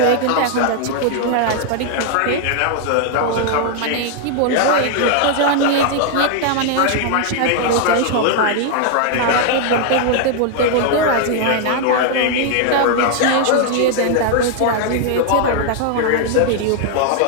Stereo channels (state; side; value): different; both; correlation 0.00